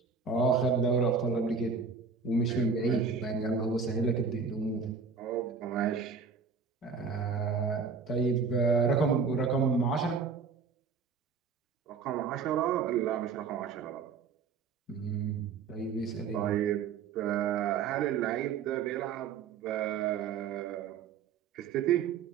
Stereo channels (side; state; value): left; quieter; 5.4 dB